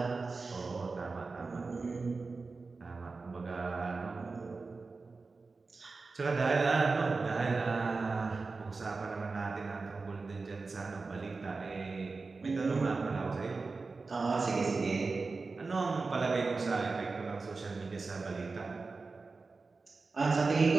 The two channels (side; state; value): left; quieter; 4.1 dB